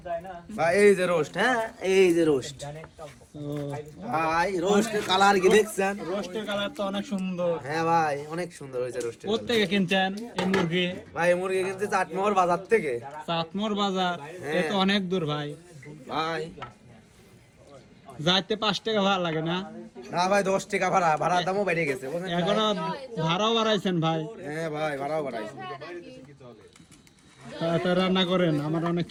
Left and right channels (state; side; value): identical; both; correlation 1.00